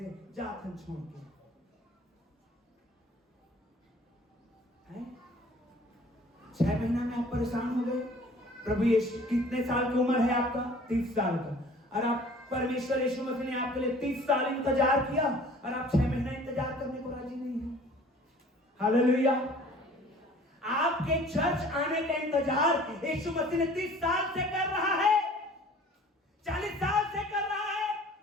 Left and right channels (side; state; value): both; normal; correlation 0.50